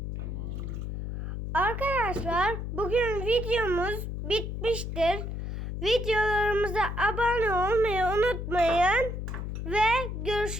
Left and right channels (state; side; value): noise; left; hum, 5 dB below the sound